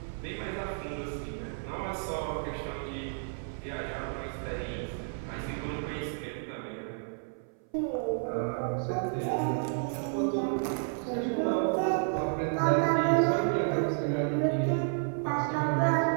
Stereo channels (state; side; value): silent; left; 57 dB below the other